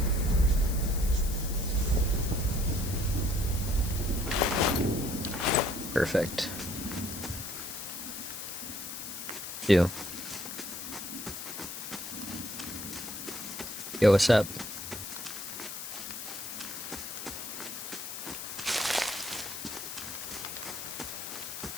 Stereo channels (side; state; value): left; noise; hiss, 8 dB below the sound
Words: Perfect. Yo, what's up?